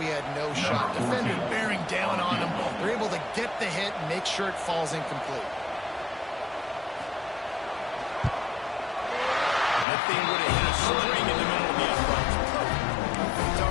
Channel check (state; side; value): drops out; right; at 9.9 s